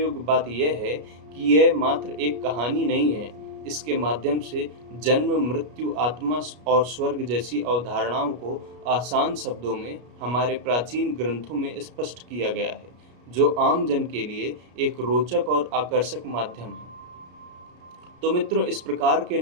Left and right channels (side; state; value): left; late; 33 ms